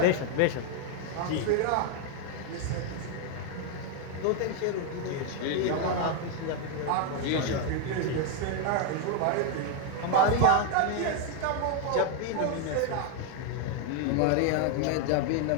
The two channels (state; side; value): different; both; correlation 0.00